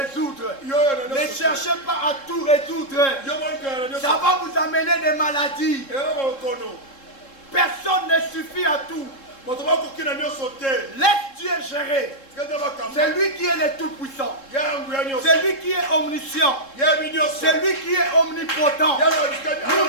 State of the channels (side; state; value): right; late; 3.7 ms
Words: Ne cherchez pas à tout résoudre. Ça va vous amener des maladies. Personne ne suffit à tout. Laisse Dieu gérer. C'est lui qui est le tout-puissant. C'est lui qui est omniscient. C'est lui qui est omnipotent.